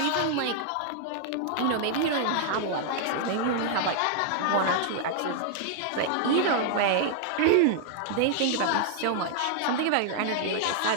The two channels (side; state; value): both; different; correlation -0.01